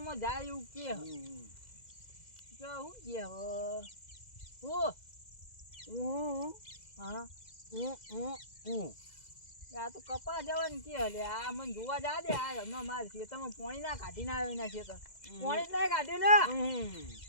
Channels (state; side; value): late; right; 2.0 ms